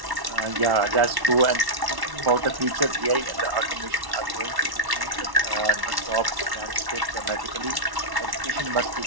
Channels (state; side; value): late; left; 1.1 ms